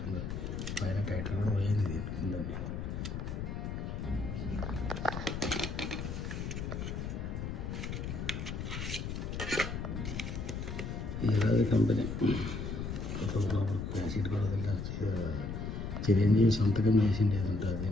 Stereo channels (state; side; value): noise; left; rumble, 4 dB below the sound